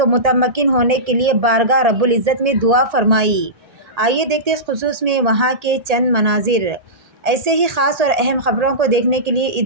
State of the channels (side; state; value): left; late; 1.8 ms